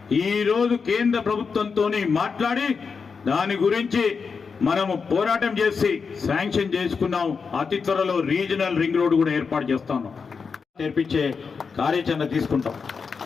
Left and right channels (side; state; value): right; quieter; 5.4 dB